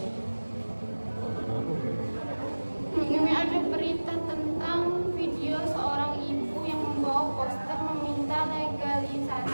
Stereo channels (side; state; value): both; inverted; correlation -1.00